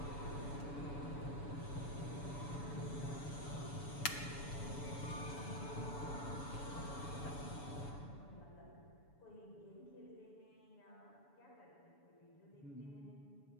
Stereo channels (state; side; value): late; right; 7.0 ms